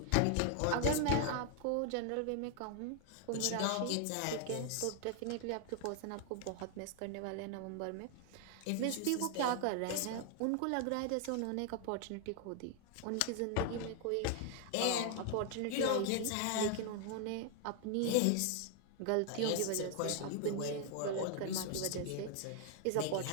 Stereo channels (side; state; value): both; different; correlation 0.00